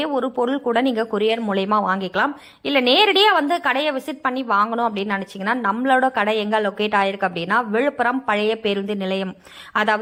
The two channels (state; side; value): identical; both; correlation 1.00